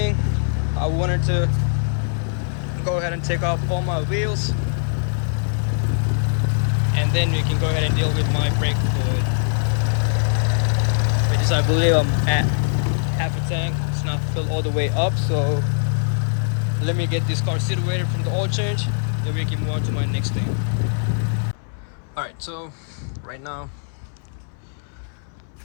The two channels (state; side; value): silent; right; 61 dB below the other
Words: I wanted to go ahead and take off all my wheels, and then we can go ahead and deal with my brake fluid, which is, I believe I'm at half a tank. It's not filled all the way up, so let me get this car situated from the oil change, then we can move on to my next thing. Alright, so right now